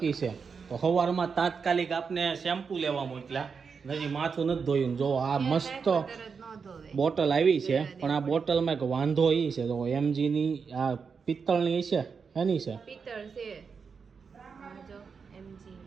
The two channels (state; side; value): quieter; left; 5.7 dB